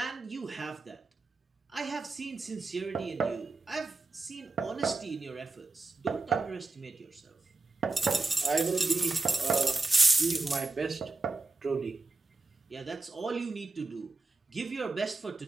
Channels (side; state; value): left; quieter; 3.4 dB